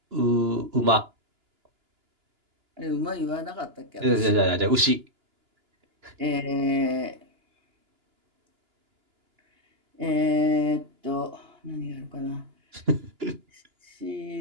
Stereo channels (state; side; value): late; left; 2.9 ms